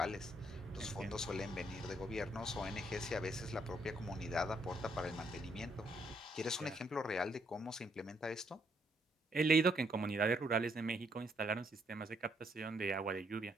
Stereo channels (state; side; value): normal; both; correlation 0.72